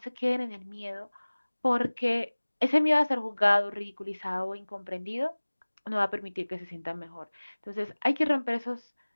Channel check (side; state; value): both; inverted; correlation -1.00